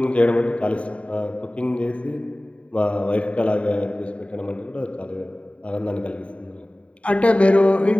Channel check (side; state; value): right; late; 0.063 ms